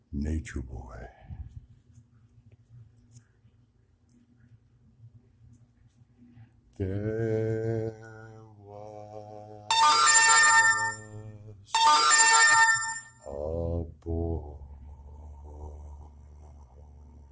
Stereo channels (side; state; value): both; identical; correlation 1.00